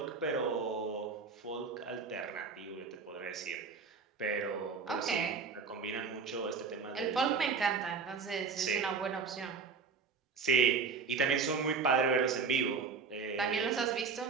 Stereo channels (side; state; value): left; quieter; 5.2 dB